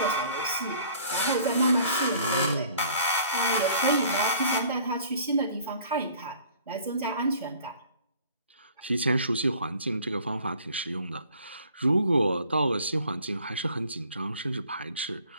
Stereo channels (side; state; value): both; inverted; correlation -0.54